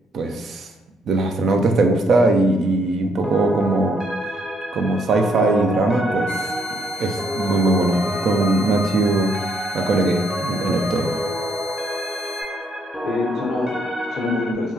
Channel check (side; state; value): both; normal; correlation 0.72